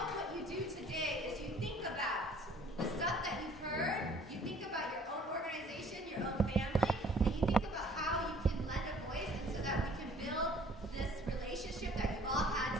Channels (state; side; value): normal; both; correlation 0.54